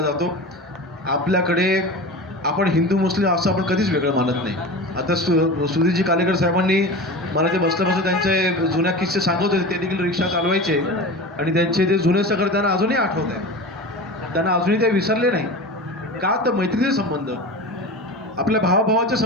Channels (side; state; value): both; normal; correlation 0.31